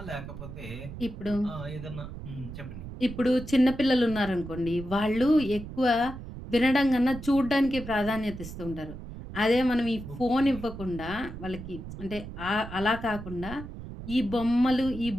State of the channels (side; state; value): right; noise; rumble, 11 dB below the sound